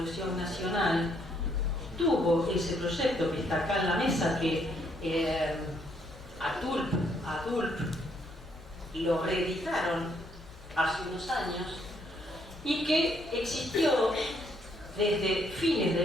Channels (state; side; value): noise; left; hum, 21 dB below the sound